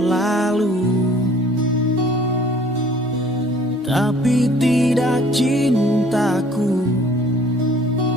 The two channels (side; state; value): both; normal; correlation 0.55